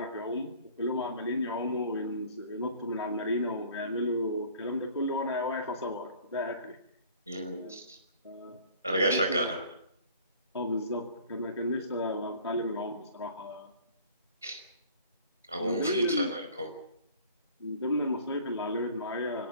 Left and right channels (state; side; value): inverted; both; correlation -0.49